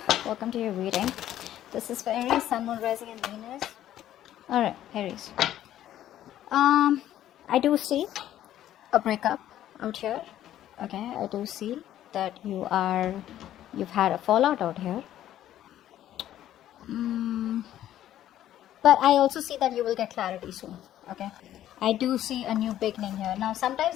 Welcome to your reading. This is for Aries, Sun, Moon, Rising, and Venus. Alright, Aries. I do see a breakup out here. Okay, I do see that you've had a fallout out here. But I also see that you will get clarity soon. Okay, I do see a new beginning here. Now,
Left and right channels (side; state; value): right; quieter; 12.3 dB